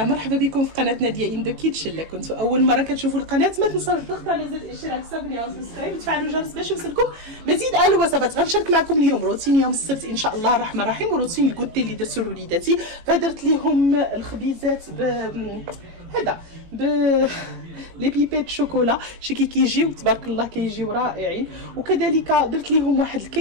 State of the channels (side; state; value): left; late; 18 ms